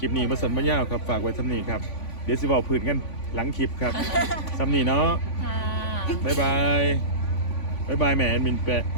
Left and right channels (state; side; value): late; right; 3.5 ms